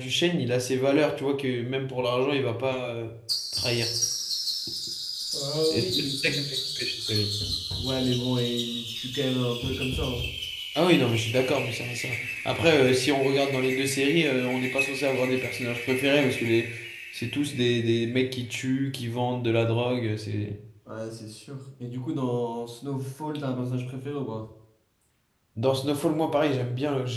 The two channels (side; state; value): both; identical; correlation 1.00